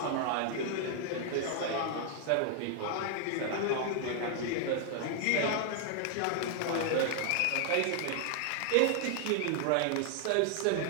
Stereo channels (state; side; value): different; both; correlation 0.00